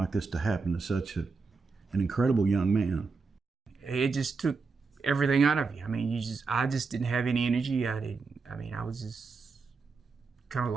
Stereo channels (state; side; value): quieter; left; 4.6 dB